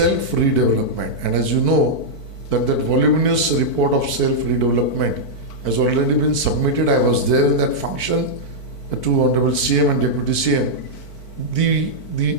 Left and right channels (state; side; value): late; right; 4.5 ms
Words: And as you know, that voluminous report of self-redevelopment has already been submitted. I was there in that function to Honorable CM and Deputy CM. The